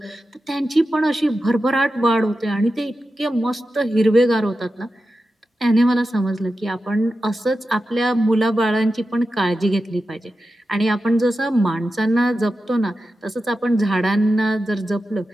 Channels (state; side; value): normal; both; correlation 0.91